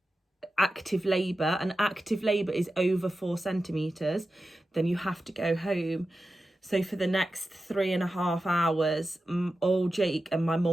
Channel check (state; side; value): normal; both; correlation 0.92